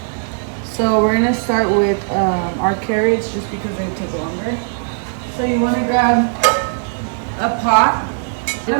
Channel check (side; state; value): left; silent; digital silence